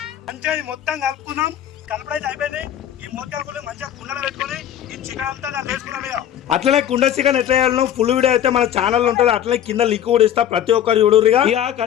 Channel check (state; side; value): quieter; right; 10.5 dB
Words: మంచిగా మొత్తం కలుపుకుందాం. కలపడైతే అయిపోయింది. ఈ మూతలు మంచిగా కుండలో పెట్టుకొని ఈ చికెన్ అంతా దాన్ని వేసుకున్నాం. ఇక అట్లనే కుండ చికెన్ ఎట్లా చేయాలో ఫుల్ వీడియో అయితే మన ఛానల్ ఉంటుంది. అట్లనే కింద లింక్ కూడా ఇస్తా, ప్రతి ఒక్కరు చూడురుగా. ఇక